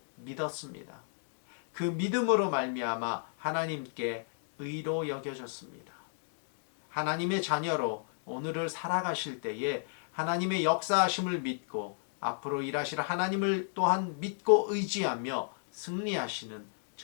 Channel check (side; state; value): right; silent; digital silence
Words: 믿었습니다. 그 믿음으로 말미암아 하나님께 의로 여겨졌습니다. 하나님의 자녀로 오늘을 살아가실 때에 하나님의 역사하심을 믿고 앞으로 일하실 하나님을 또한 믿고 의지하며 승리하시는